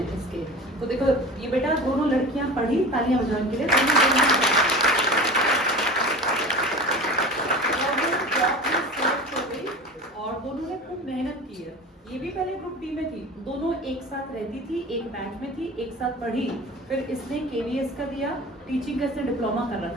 इसके। तो देखो ये बेटा दोनों लड़कियां पढ़ी, तालियां बजाने के लिए। और दोनों ने खूब मेहनत की है। ये भी पहले ग्रुप डी में थी, दोनों एक साथ रहती थी, एक बैच में थी, एक साथ पढ़ी। फिर इसने केवीएस का दिया, टीचिंग का इसने डिप्लोमा कर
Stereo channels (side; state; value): both; normal; correlation 0.35